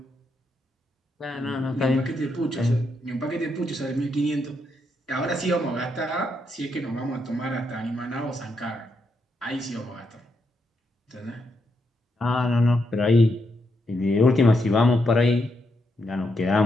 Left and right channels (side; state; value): both; normal; correlation 0.80